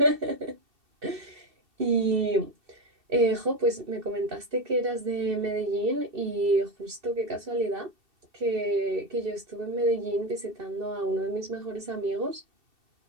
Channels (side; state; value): left; late; 2.7 ms